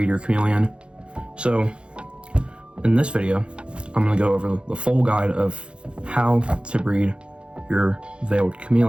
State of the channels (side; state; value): left; late; 0.056 ms